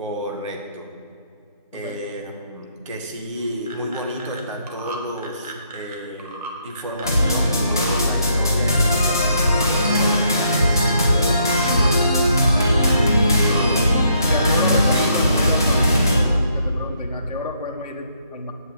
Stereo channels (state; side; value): inverted; both; correlation -0.72